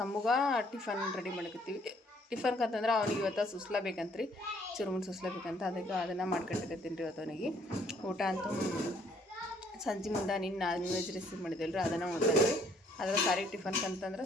ಟಿಫನ್ ರೆಡಿ ಮಾಡಕತ್ತೀವಿ. ಟಿಫನ್ಗೆ ಅಂತಂದ್ರೆ ಅವನಿಗೆ ಇವತ್ತು ಸುಸ್ಲಾ ಬೇಕಂತ್ರಿ, ಚುರುಮುರು ಸುಸ್ಲಾ ಬೇಕಂತ. ಅದಕ್ಕೆ ಅದನ್ನು ಮಾಡ್ಕೊಂಡಿರ್ತೀನಿ ರೀ ಇವತ್ತು ಅವನಿಗೆ. ಊಟ ಅಂತೂ ಸಂಜೆ ಮುಂದೆ ನಾನ್ ವೆಜ್ ರೆಸಿಪಿ ಮಾಡಿದ್ವಲ್ರಿ, ಅದನ್ನು ಉಣ್ತಾನೆ. ಅದ್ರ ಸಾರಿ ಟಿಫನ್ಗೆ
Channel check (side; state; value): both; normal; correlation 0.64